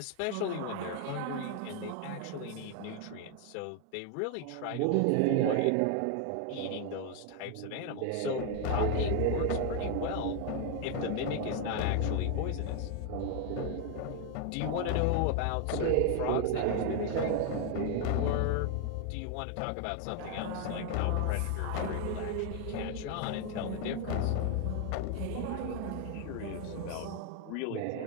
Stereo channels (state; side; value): different; both; correlation 0.01